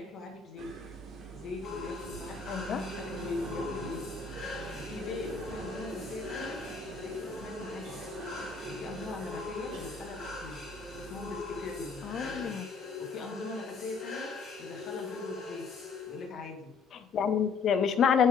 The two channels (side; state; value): right; quieter; 4.9 dB